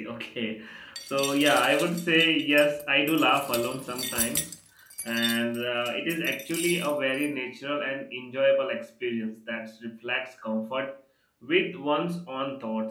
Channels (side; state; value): both; identical; correlation 1.00